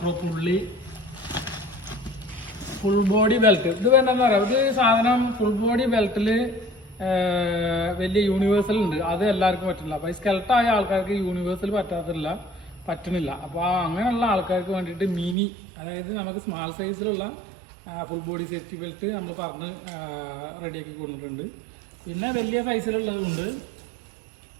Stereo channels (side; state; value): left; drops out; at 15.4 s